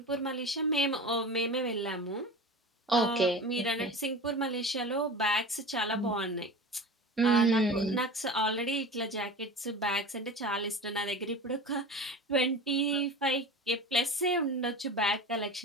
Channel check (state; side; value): normal; both; correlation 0.33